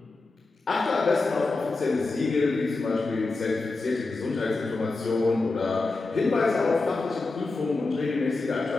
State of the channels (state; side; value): quieter; right; 3.5 dB